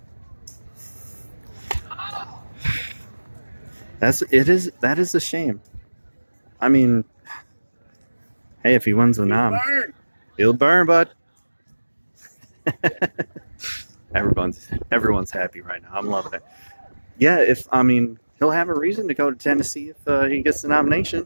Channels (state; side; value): inverted; both; correlation -1.00